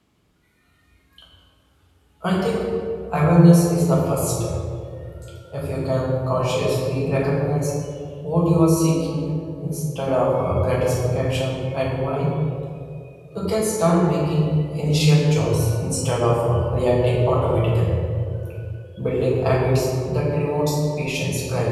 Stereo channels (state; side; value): identical; both; correlation 1.00